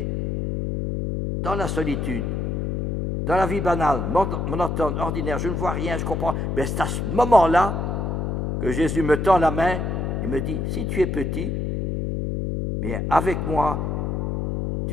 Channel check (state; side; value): noise; left; hum, 1 dB below the sound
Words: dans la solitude, dans la vie banale, monotone, ordinaire, je ne vois rien, je comprends. Mais c'est à ce moment-là que Jésus me tend la main et me dit, si tu es petit, bien avec moi,